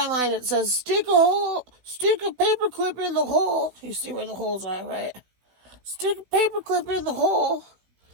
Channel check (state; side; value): late; left; 16 ms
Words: it says stick a paper clip in the hole. You see where the holes are, right? Stick a paper clip in the hole